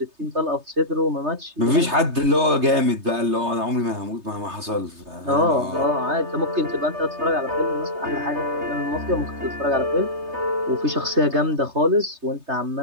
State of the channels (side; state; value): left; late; 3.3 ms